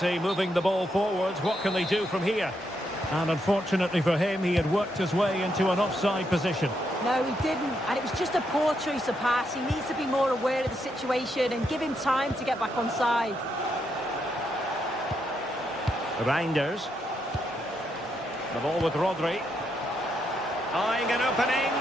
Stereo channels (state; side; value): normal; both; correlation 0.79